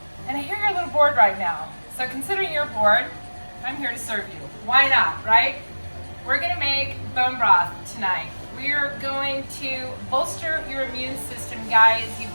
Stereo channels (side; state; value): both; inverted; correlation -1.00